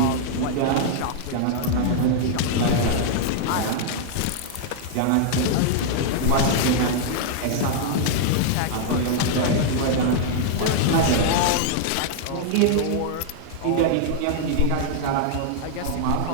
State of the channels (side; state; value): both; different; correlation -0.01